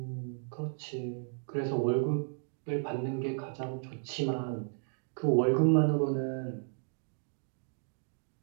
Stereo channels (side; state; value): left; silent; 55 dB below the other